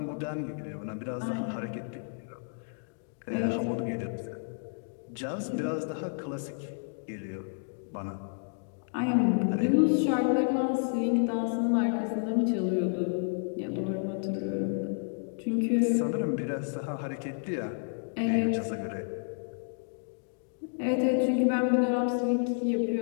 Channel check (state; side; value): silent; right; digital silence